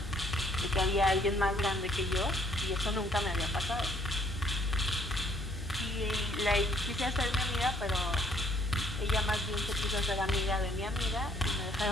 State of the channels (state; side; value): normal; both; correlation 0.64